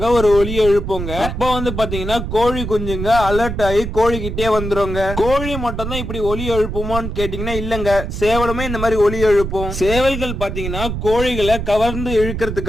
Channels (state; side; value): noise; right; rumble, 5 dB below the sound